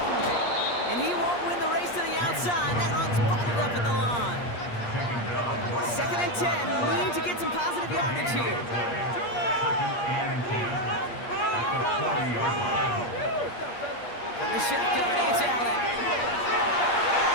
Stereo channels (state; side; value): late; right; 8.5 ms